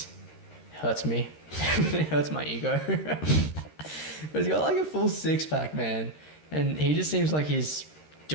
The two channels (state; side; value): late; right; 13 ms